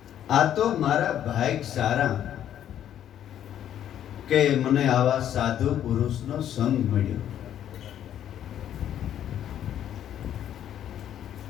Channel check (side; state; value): right; quieter; 10.6 dB